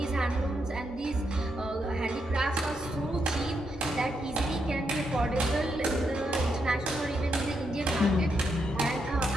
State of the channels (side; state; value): both; normal; correlation 0.80